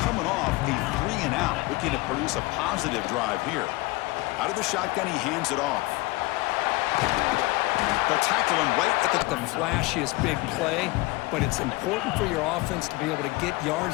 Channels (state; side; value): quieter; right; 21.7 dB